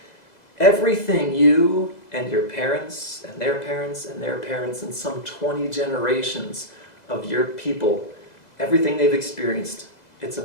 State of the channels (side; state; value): right; late; 2.0 ms